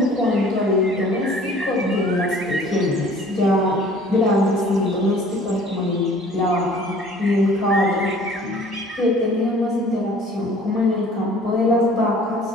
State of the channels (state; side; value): normal; both; correlation 0.51